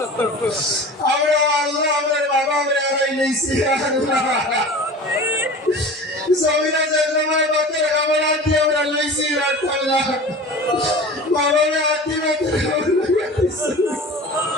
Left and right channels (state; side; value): normal; both; correlation 0.37